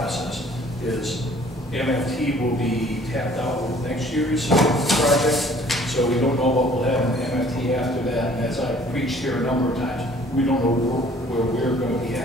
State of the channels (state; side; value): normal; both; correlation 0.55